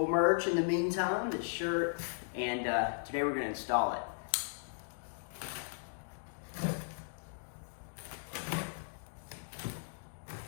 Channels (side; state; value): right; silent; digital silence